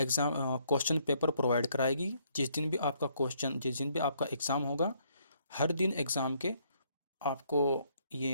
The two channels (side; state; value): both; inverted; correlation -0.69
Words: paper provide कराएगी। जिस दिन भी आपका एग्ज़ाम होगा, हर दिन एग्ज़ाम के आपको